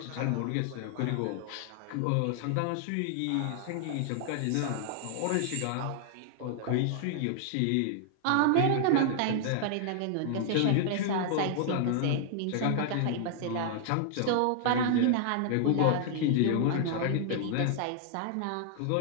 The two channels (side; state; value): both; different; correlation 0.00